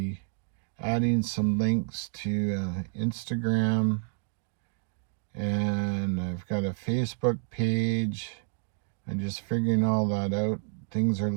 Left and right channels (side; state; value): left; silent; 58 dB below the other